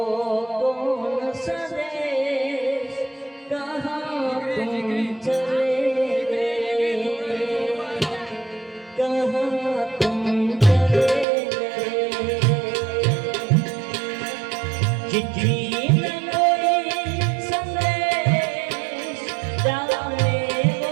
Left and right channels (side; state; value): left; drops out; at 11.2 s